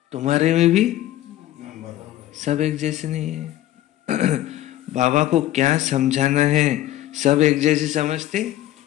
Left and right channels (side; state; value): right; quieter; 14.1 dB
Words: तुम्हारे में भी सब एक जैसे नहीं है। बाबा को क्या समझाना है, सब एक जैसे समझते